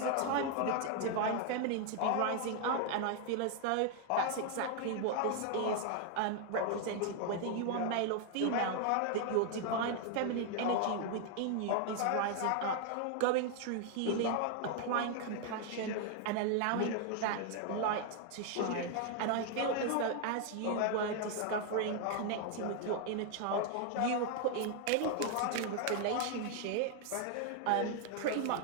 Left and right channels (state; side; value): different; both; correlation 0.00